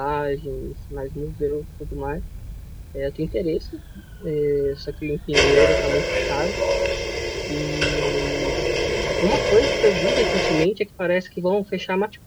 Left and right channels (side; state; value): both; identical; correlation 1.00